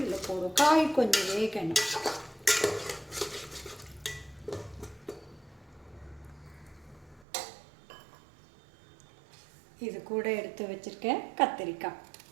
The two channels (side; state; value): left; drops out; at 7.2 s